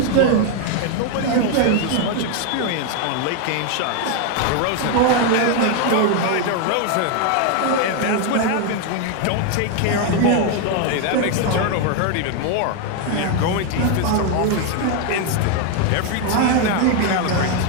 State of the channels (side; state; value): both; different; correlation 0.01